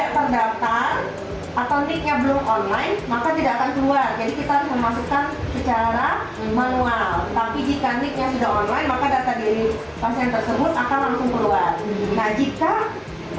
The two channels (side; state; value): both; identical; correlation 1.00